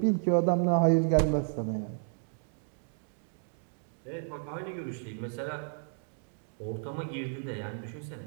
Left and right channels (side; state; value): left; silent; 56 dB below the other